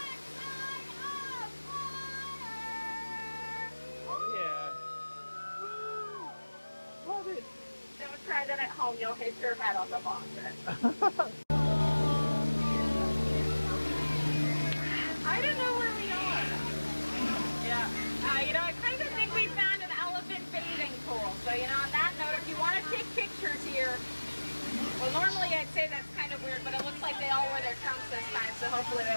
of Water! Yeah. Love it. Don't try that at home, you'll hit your head on the faucet. I don't know where we are. Yeah. You know, I kind of think we found an elephant bathing pool. So, you know, on that note, if you want to take pictures here, well, normally I'd say that's kind of weird, but it looks like they all wear their trunks this time, so hopefully they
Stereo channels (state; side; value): inverted; both; correlation -1.00